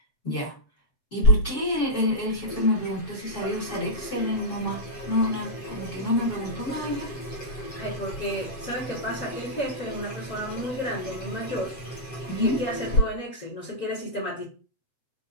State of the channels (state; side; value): late; right; 7.9 ms